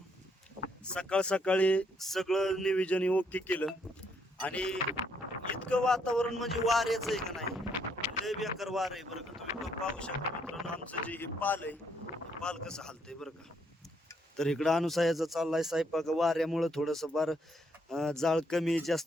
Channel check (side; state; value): both; normal; correlation 0.72